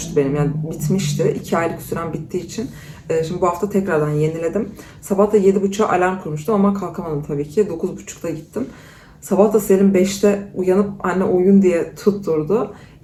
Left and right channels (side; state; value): both; identical; correlation 1.00